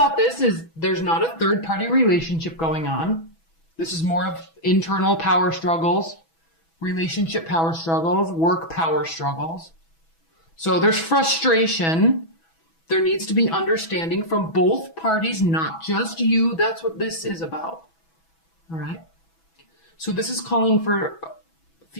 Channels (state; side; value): late; right; 6.1 ms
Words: this is there's not a third-party relationship going on. This is more of internal power struggles, relationship power struggles, work power struggles. So there's frustration. There needs to be understanding from both parties, not just you. That's what this is about. All right? So this is calling for a